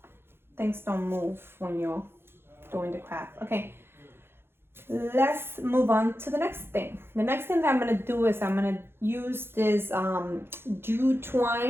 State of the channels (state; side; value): late; left; 0.11 ms